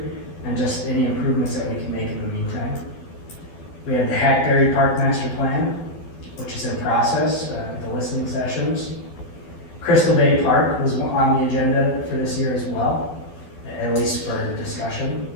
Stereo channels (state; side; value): late; right; 12 ms